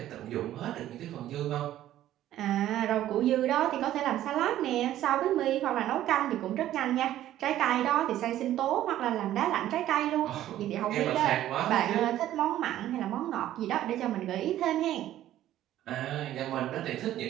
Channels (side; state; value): left; quieter; 13.0 dB